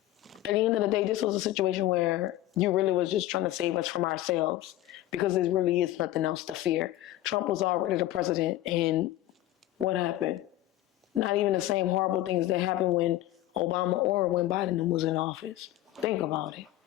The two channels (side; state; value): right; quieter; 14.9 dB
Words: at the end of the day, this was a situation where you really was just trying to save us from ourselves because there really is nothing else to fear. Trump was already the president, and what happened? Not even the same horrible things that happened when Obama or when Biden was in office. Think about it.